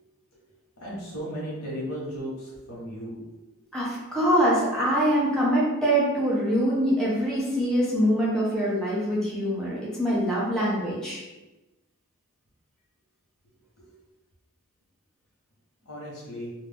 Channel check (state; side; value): normal; both; correlation 0.49